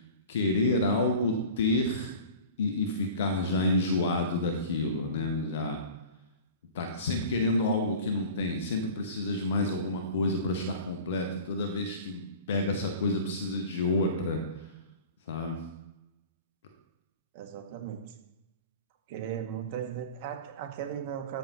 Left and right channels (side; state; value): both; inverted; correlation -0.38